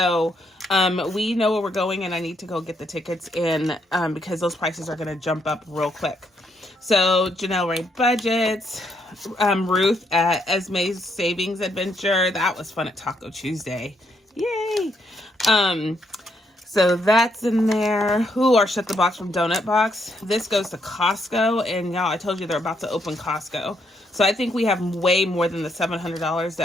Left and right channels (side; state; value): both; normal; correlation 0.75